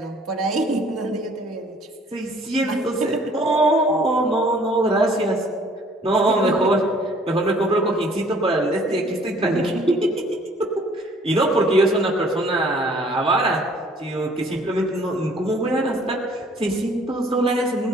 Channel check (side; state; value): both; normal; correlation 0.57